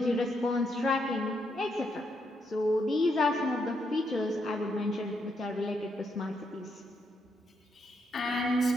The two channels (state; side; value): normal; both; correlation 0.78